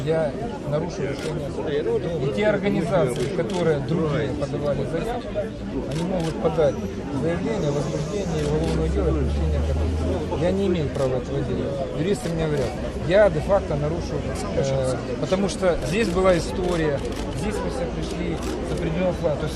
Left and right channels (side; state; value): both; identical; correlation 1.00